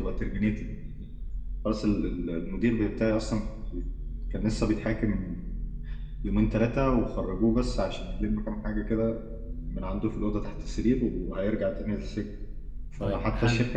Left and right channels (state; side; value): identical; both; correlation 1.00